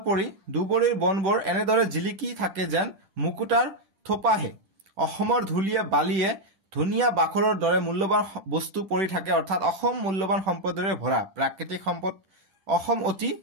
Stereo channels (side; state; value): left; late; 10 ms